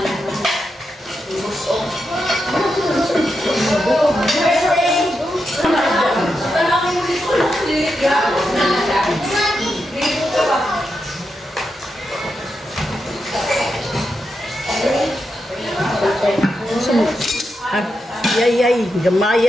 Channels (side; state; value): both; normal; correlation 0.86